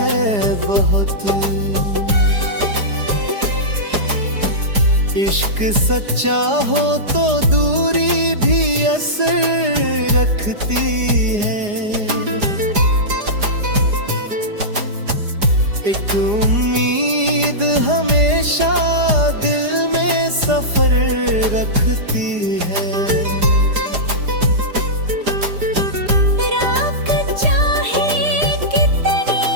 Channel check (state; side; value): late; left; 4.9 ms